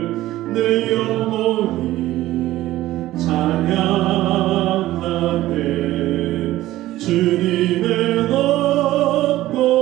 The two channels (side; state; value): left; quieter; 15.6 dB